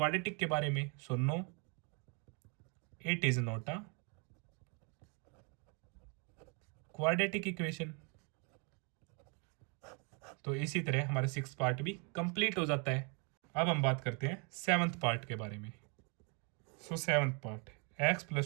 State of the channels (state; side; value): quieter; left; 34.9 dB